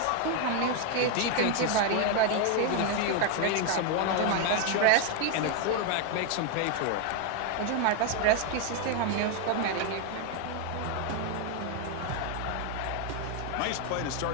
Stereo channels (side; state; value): both; different; correlation 0.01